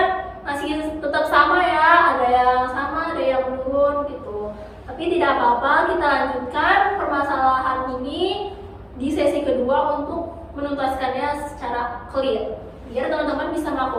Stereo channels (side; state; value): both; identical; correlation 1.00